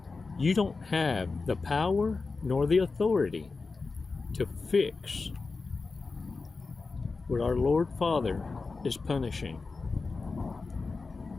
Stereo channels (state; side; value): quieter; right; 4.1 dB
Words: you don't have the power nor the authority to fix what our Lord Father is punishing.